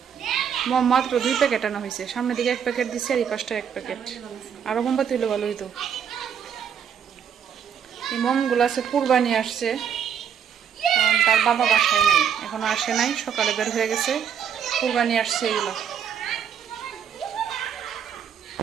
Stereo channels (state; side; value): quieter; left; 8.1 dB